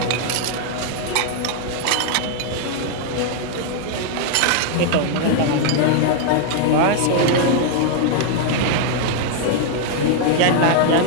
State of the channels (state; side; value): different; both; correlation 0.00